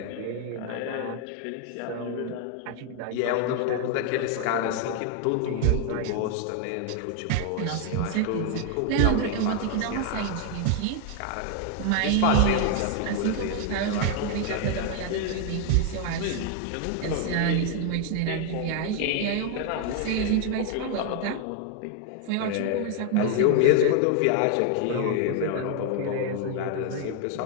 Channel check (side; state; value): both; different; correlation 0.00